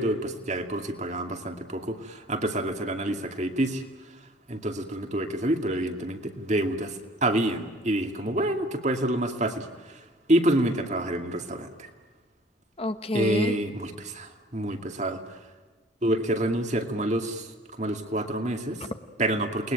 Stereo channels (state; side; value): normal; both; correlation 0.51